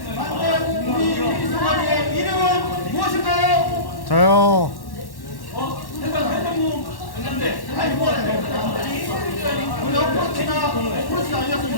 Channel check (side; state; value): right; late; 1.1 ms